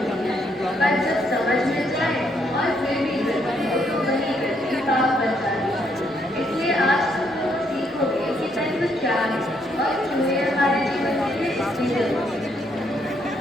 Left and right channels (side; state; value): both; normal; correlation 0.73